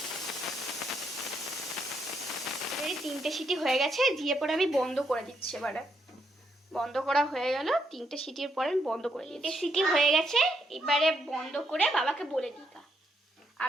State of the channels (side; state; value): both; normal; correlation 0.77